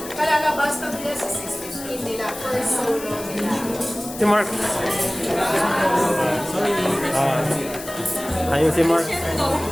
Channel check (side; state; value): left; noise; hiss, 13 dB below the sound